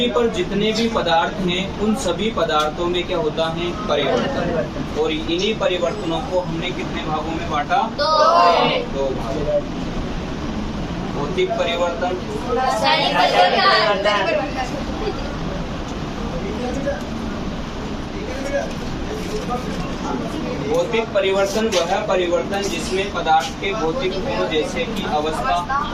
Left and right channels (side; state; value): both; identical; correlation 1.00